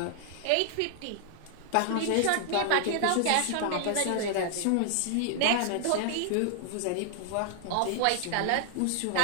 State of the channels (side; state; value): both; different; correlation 0.00